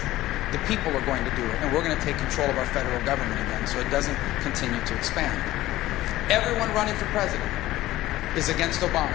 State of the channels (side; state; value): right; quieter; 16.1 dB